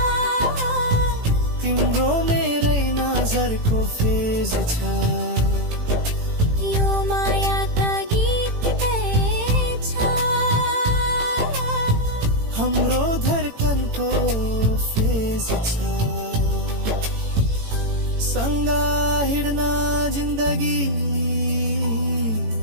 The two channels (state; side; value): late; left; 18 ms